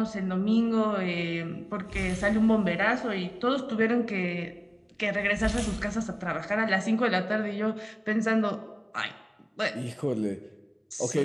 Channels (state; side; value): identical; both; correlation 1.00